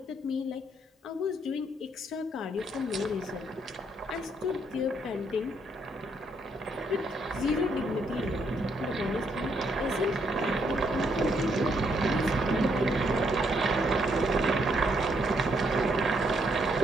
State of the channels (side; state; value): both; normal; correlation 0.73